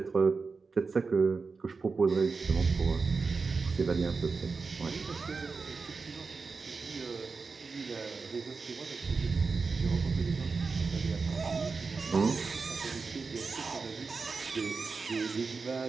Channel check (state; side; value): quieter; left; 4.5 dB